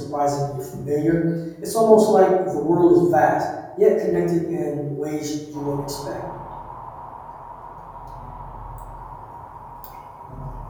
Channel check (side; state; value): both; identical; correlation 1.00